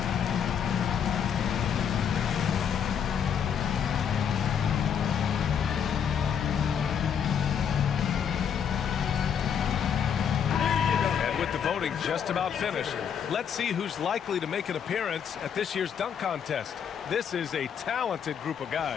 Voting just about finished. Let's see who's likely to make an appearance at this year's dunk contest. This is a talented group of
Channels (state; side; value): quieter; right; 7.9 dB